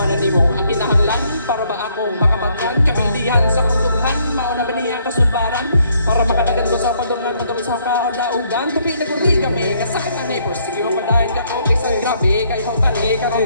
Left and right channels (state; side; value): inverted; both; correlation -0.69